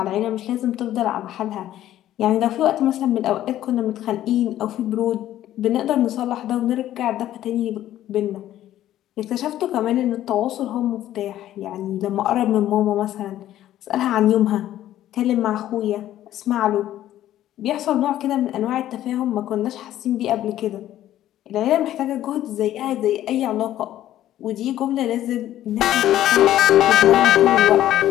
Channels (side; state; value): right; quieter; 12.8 dB